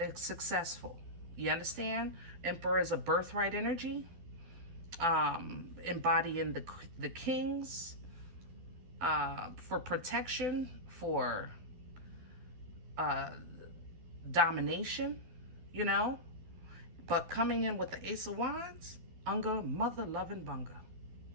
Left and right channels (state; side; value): late; left; 12 ms